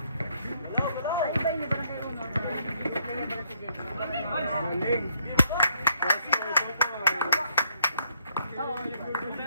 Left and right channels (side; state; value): both; inverted; correlation -0.70